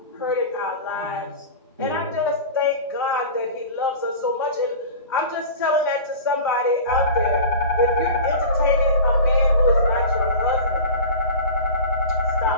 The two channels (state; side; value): inverted; both; correlation -0.33